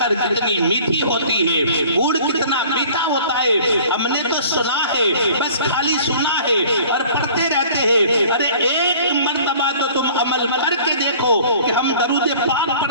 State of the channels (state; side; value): inverted; both; correlation -0.49